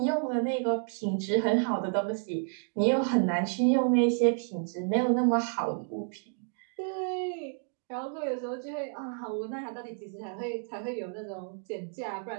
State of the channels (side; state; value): left; silent; 58 dB below the other